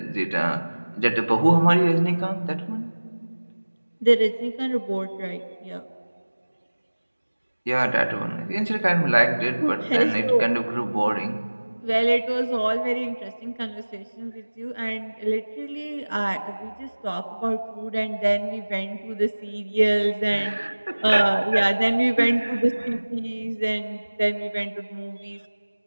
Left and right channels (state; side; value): inverted; both; correlation -1.00